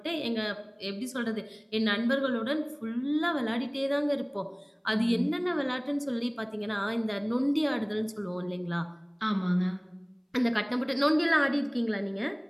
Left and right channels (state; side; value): identical; both; correlation 1.00